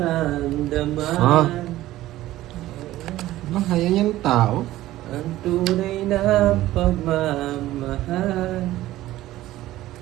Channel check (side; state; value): left; quieter; 15.4 dB